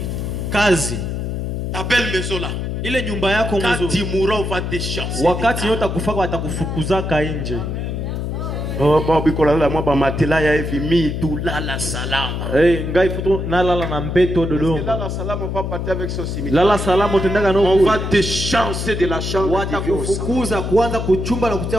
Kazi Ta belle maison là. ile nyumba yako Quand mzuri, tu mourras, on va te chasser. wakati yote akufaka watakufukuzaka nje. Oh, matela ya hivi mi tu lala salama. Ngai futu nalala na mbeto Dodoma. Lala salama, on va partir avec son cimetière. Lala salama utendaga no On kule. va te chasser de la chambre. Watakufukuza kuanza kuchumba na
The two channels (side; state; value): left; noise; hum, 3 dB below the sound